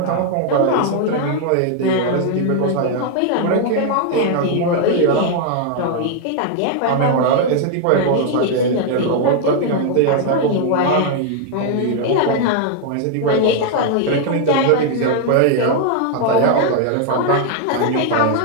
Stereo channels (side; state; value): both; different; correlation 0.00